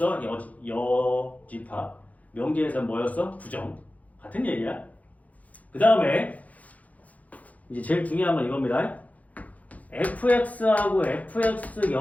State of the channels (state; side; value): late; right; 0.073 ms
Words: 여집합. 명제에서는 뭐였어? 부정. 같은 얘기야. 그 다음에 이제 제일 중요한 건 이겁니다. fx하고 fx